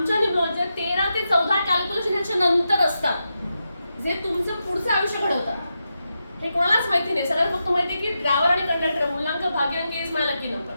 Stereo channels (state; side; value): inverted; both; correlation -0.87